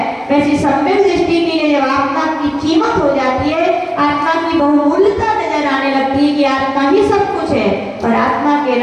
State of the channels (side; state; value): both; identical; correlation 1.00